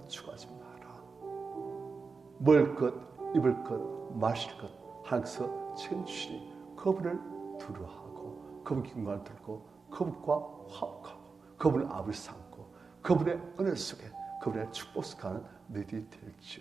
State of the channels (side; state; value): left; quieter; 4.7 dB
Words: 추구하지 마라. 먹을 것, 입을 것, 마실 것 하나님께서 채주시니 그분을 두려워하고 그분께 영광을 돌리고 그분과 화목하고 그분을 앞을 삼고 그분의 은혜 속에 그분의 축복 속에 가는 너희들이